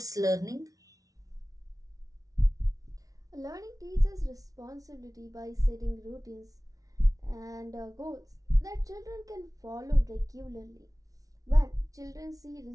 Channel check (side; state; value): left; late; 0.18 ms